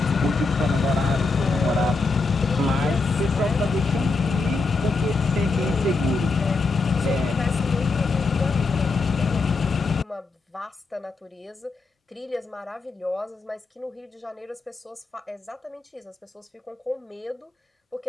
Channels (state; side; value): quieter; right; 3.8 dB